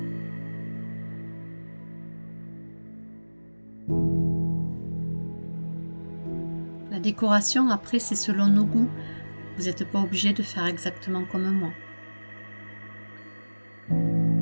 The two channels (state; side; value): inverted; both; correlation -1.00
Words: La décoration, après, c'est selon nos goûts. Vous n'êtes pas obligé de faire exactement comme moi.